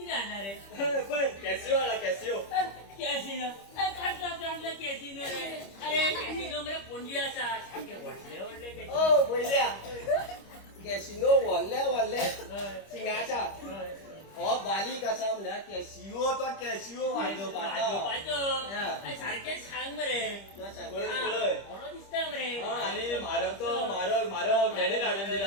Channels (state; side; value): late; right; 25 ms